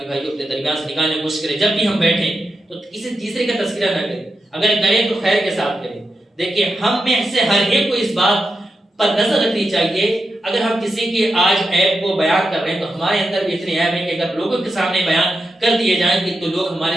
بھائیوں اپنے درمیان سے نکالنے کی کوشش کریں. جب بھی ہم بیٹھیں تو کسی تیسرے کا تذکرہ نہ کریں, اگر کریں تو خیر کے ساتھ کریں. دیکھیں ہم میں سے ہر ایک کو اس بات پر نظر رکھنی چاہیے اگر ہم کسی کی آج عیب کو بیان کر رہے ہیں تو ہمارے اندر بھی اتنے عیب ہیں کہ اگر لوگوں کے سامنے بیان کر دیے جائیں گے تو لوگ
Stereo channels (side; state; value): both; normal; correlation 0.88